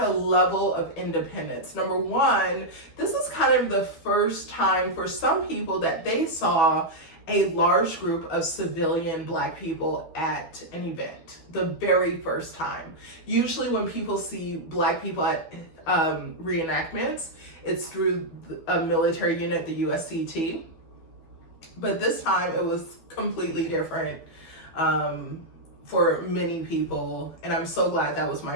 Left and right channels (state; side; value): late; right; 12 ms